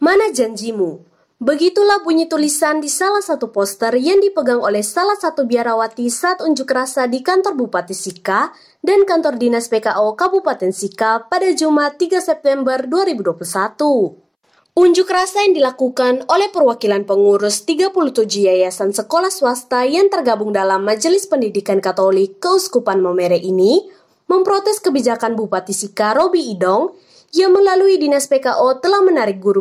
janjimu? Begitulah bunyi tulisan di salah satu poster yang dipegang oleh salah satu biarawati saat unjuk rasa di kantor Bupati Sika dan kantor Dinas PKO Kabupaten Sika pada Jumat 3 September 2021. Unjuk rasa yang dilakukan oleh perwakilan pengurus 37 yayasan sekolah swasta yang tergabung dalam Majelis Pendidikan Katolik Keuskupan Momere ini memprotes kebijakan Bupati Sika Robi Idong yang melalui Dinas PKO telah menarik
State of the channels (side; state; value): both; identical; correlation 1.00